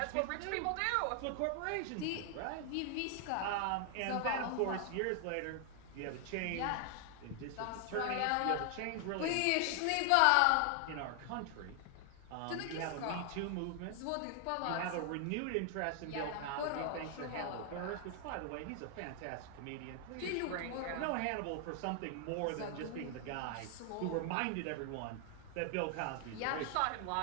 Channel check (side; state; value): both; different; correlation 0.00